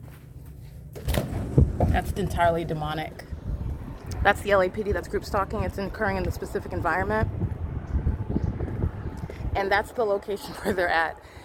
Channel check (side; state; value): both; identical; correlation 1.00